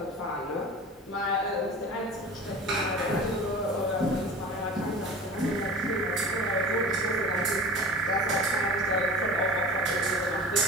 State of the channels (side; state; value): both; normal; correlation 0.36